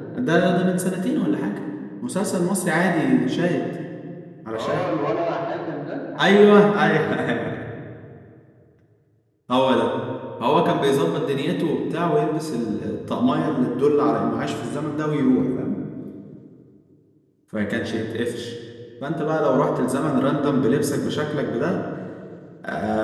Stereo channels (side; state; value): both; identical; correlation 1.00